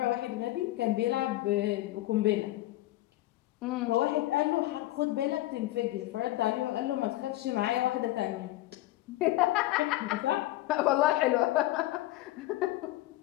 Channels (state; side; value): quieter; right; 16.8 dB